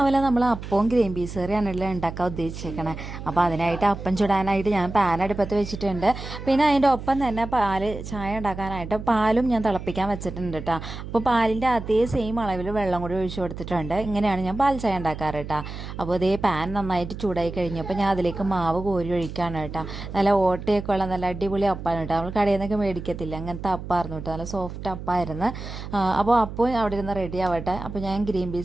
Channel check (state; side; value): noise; right; hum, 9 dB below the sound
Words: നമ്മൾ അപ്പവും ഗ്രീൻ പീസ് കറിയാണല്ലോ ഉണ്ടാക്കാൻ ഉദ്ദേശിച്ചേക്കണേ. അപ്പോൾ അതിനായിട്ട് അപ്പം ചുടാനായിട്ട് ഞാൻ പാൻ അടുപ്പത്ത് വെച്ചിട്ടുണ്ട്. പിന്നെ അതിൻ്റെ ഒപ്പം തന്നെ ചായ ഉണ്ടാക്കാനായിട്ട് പാലും ഞാൻ തിളപ്പിക്കാൻ വെച്ചിട്ടുണ്ട് കേട്ടോ. അപ്പോൾ പാലിൻ്റെ അതേ സെയിം അളവിൽ വെള്ളം കൂടി ഒഴിച്ചു കൊടുത്തിട്ടുണ്ട്. ഇങ്ങനെയാണ് ഞാൻ പാൽ ചായ ഉണ്ടാക്കാറ് കേട്ടോ. അപ്പോൾ ഇതേ പാൻ നന്നായിട്ട് ചൂടായി കഴിഞ്ഞപ്പോൾ ഞാൻ അതിലേക്ക് മാവ് കോരി ഒഴിക്കുകയാണ് കേട്ടോ. നല്ല ഓട്ടയൊക്കെ ഉള്ള നല്ല അടിപൊളി അപ്പാണ് കേട്ടോ. നമ്മൾ കടയിൽ നിന്നൊക്കെ മേടിക്കത്തില്ല, അങ്ങനത്തെ അപ്പായിരുന്നു കേട്ടോ. നല്ല സോഫ്റ്റ് അപ്പായിരുന്നു. അപ്പോൾ അപ്പം അവിടെ ഇരുന്ന് റെഡി ആവട്ടെ. അപ്പോൾ ഞാൻ ഗ്രീൻ